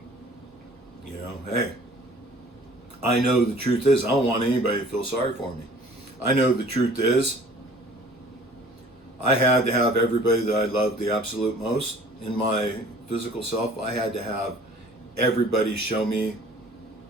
You know, hey, I know the truth is, I don't want anybody to feel sorry for me. I know the truth is, I had to have everybody that I loved the absolute most in my physical self. I had to have everybody show me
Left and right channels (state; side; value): normal; both; correlation 0.50